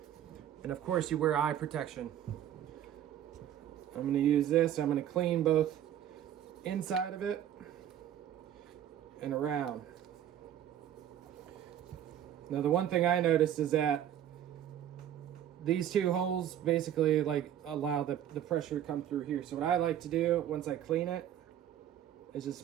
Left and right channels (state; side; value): quieter; left; 10.7 dB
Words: and of course you wear eye protection. I'm going to use this. I'm going to clean both inside of it and around. Now the one thing I noticed is that these two holes basically like allow the pressure to come through here. So what I like to do once I clean it is just